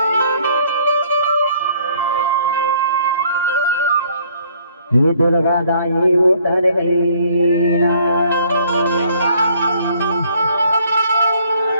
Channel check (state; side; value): inverted; both; correlation -0.62